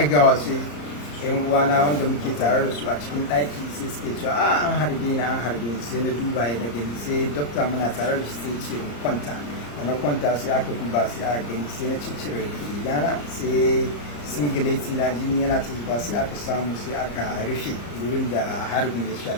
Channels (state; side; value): late; right; 34 ms